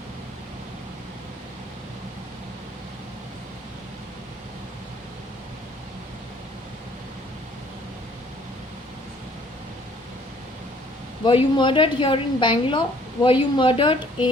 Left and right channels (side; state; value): both; normal; correlation 0.59